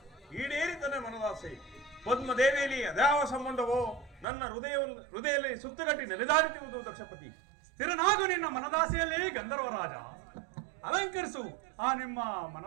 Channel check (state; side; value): drops out; left; at 4.2 s